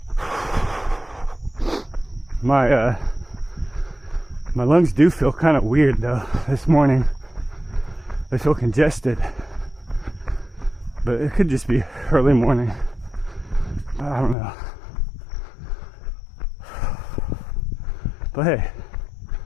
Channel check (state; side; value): drops out; right; at 14.4 s